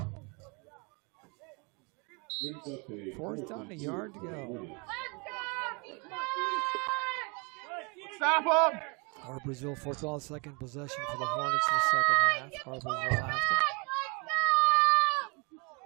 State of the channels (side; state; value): left; quieter; 31.6 dB